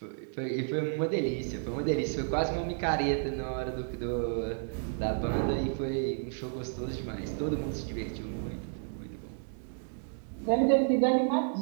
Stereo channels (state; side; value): silent; left; digital silence